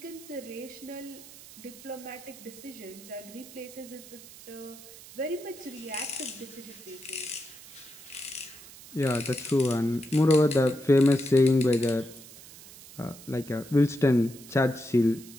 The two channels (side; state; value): right; noise; hiss, 18 dB below the sound